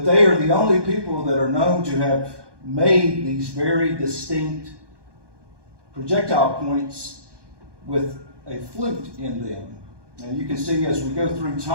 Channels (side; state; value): left; late; 1.2 ms